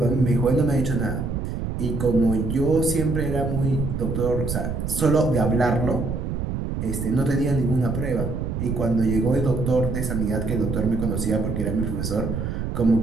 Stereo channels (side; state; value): right; noise; rumble, 3 dB below the sound